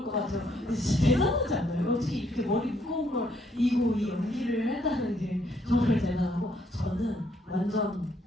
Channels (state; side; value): normal; both; correlation 0.70